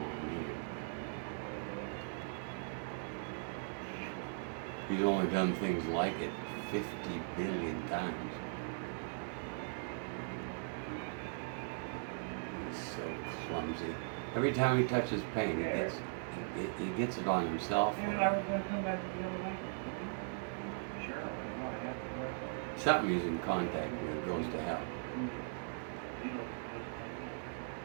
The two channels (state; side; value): silent; left; digital silence